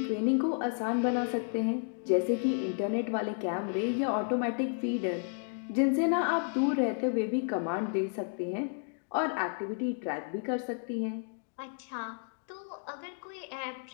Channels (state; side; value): silent; right; 56 dB below the other